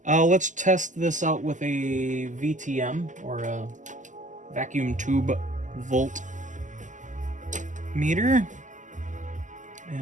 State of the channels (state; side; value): late; left; 0.37 ms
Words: Let's test this out with a VTM, or a vacuum tube volt meter.